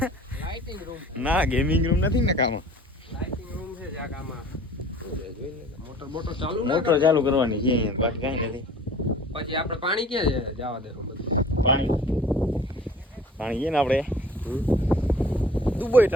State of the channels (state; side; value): normal; both; correlation 0.47